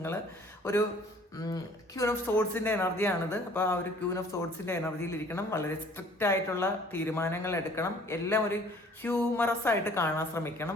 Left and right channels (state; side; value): normal; both; correlation 0.54